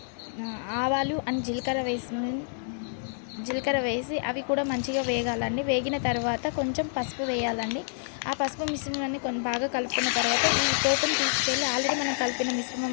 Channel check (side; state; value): right; silent; digital silence